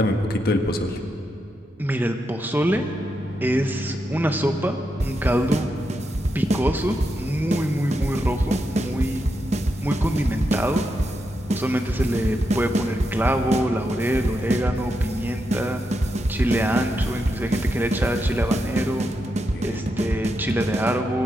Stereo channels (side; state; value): both; normal; correlation 0.84